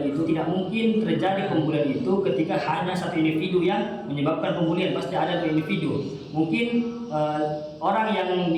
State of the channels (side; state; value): both; identical; correlation 1.00